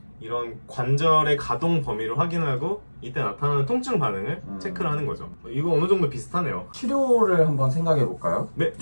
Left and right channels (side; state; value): both; inverted; correlation -1.00